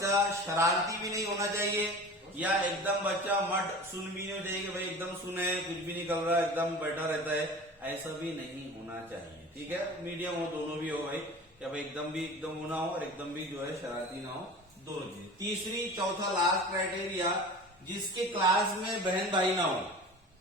शरारती भी नहीं होना चाहिए, या एकदम बच्चा मट सुन भी नहीं चाहिए कि भाई एकदम सुने, कुछ भी नहीं कर रहा, एकदम बैठा रहता है, ऐसा भी नहीं होना चाहिए। ठीक है, मीडियम हो, दोनों भी हो भाई, क्या भाई एकदम भी एकदम होना हो और एकदम भी जो है शरारती ना हो, दोनों चीजें। तीसरी, चौथा, लास्ट क्राइटेरिया, जिसके क्लास में बहन भाई ना हो।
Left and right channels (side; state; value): both; normal; correlation 0.37